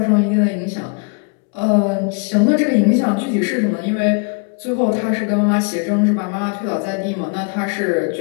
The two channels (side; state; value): right; quieter; 34.6 dB